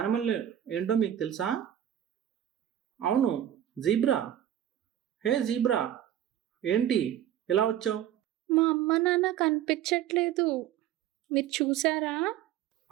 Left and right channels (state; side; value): quieter; left; 11.3 dB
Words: ఏంటో మీకు తెలుసా? అవును, జీబ్రా. హే జీబ్రా, ఏంటి ఇలా వచ్చావు? మా అమ్మ నాన్న కనిపించట్లేదు, మీరు చూసారా?